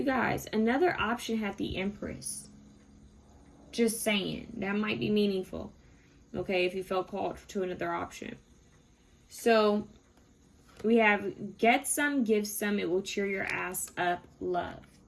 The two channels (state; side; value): identical; both; correlation 1.00